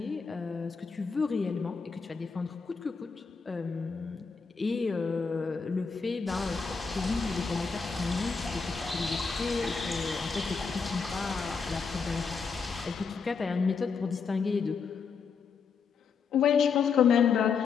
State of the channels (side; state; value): right; quieter; 5.5 dB